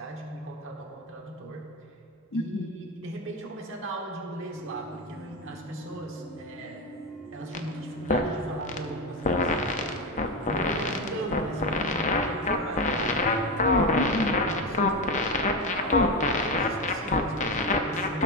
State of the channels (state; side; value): normal; both; correlation 0.14